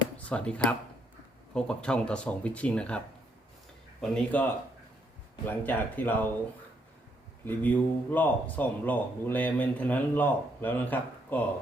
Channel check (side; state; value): both; normal; correlation 0.73